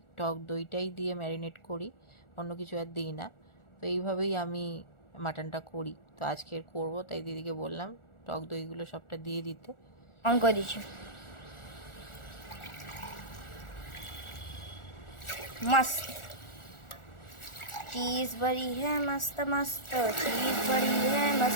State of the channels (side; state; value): right; late; 1.4 ms